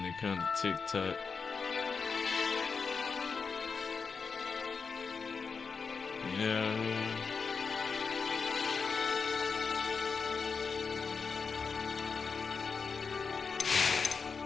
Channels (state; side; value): quieter; right; 5.2 dB